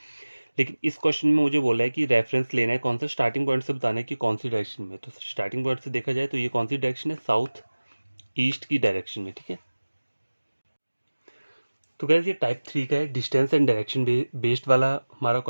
लेकिन इस क्वेश्चन में मुझे बोला है कि रेफरेंस लेना है कौन सा, स्टार्टिंग पॉइंट से बताना है कि कौन सी डायरेक्शन में। तो स्टार्टिंग पॉइंट से देखा जाए तो ये कौन सी डायरेक्शन है, साउथ ईस्ट की डायरेक्शन में, ठीक है। तो गाइस ये टाइप 3 का है, डिस्टेंस एंड डायरेक्शन बेस्ड वाला हमारा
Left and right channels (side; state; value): both; inverted; correlation -1.00